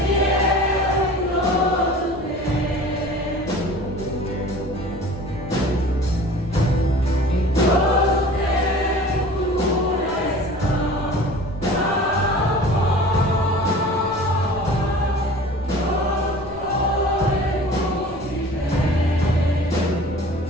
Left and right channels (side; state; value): left; noise; rumble, 18 dB below the sound